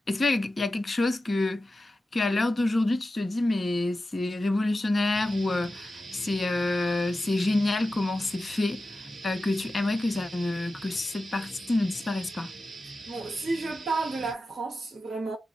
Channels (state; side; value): normal; both; correlation 0.93